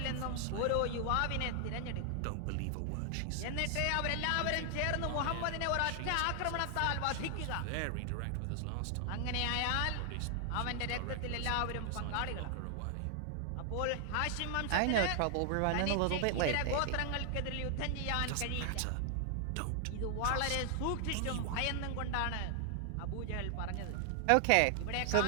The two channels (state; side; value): different; both; correlation 0.00